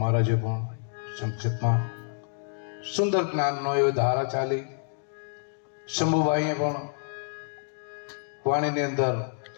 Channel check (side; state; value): right; silent; digital silence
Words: મહારાજે પણ સંક્ષેપમાં સુંદર જ્ઞાનનો એવો ધારા ચાલી. શંભુભાઈએ પણ વાણીની અંદર